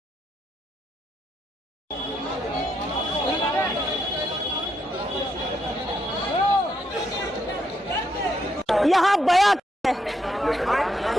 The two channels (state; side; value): normal; both; correlation 0.78